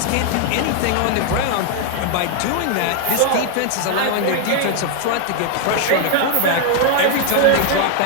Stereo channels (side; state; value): both; different; correlation 0.00